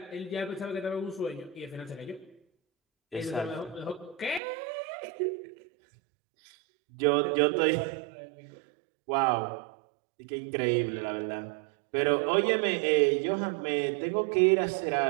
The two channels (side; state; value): left; drops out; at 4.4 s